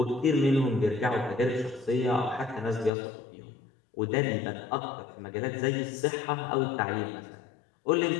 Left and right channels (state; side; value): drops out; right; at 2.9 s